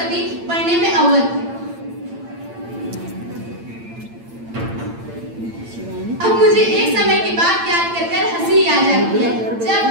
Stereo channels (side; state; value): left; late; 8.8 ms